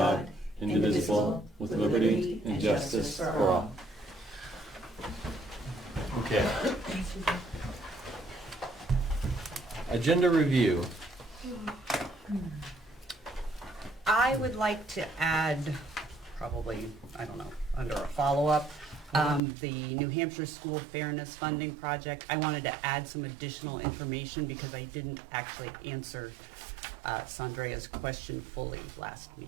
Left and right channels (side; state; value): left; drops out; at 19.4 s